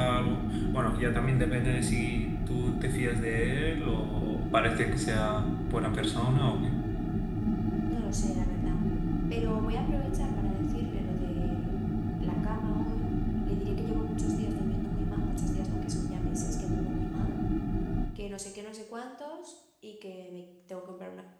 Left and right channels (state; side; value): identical; both; correlation 1.00